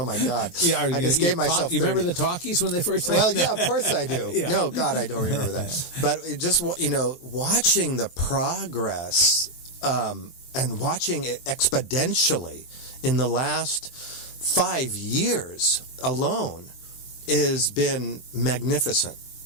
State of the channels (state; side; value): late; right; 23 ms